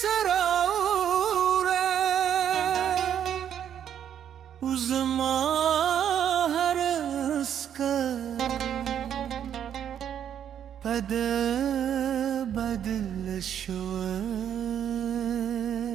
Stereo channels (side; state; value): left; quieter; 9.4 dB